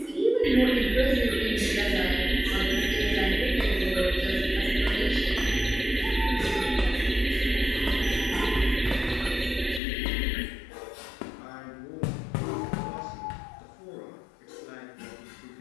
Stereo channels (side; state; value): right; drops out; at 9.8 s